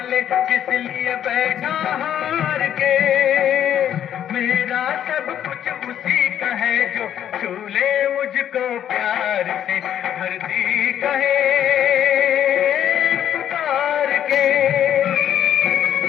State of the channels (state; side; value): quieter; right; 10.2 dB